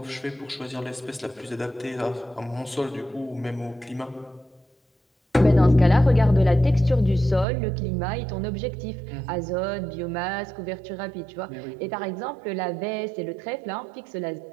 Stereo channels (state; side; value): drops out; left; at 7.5 s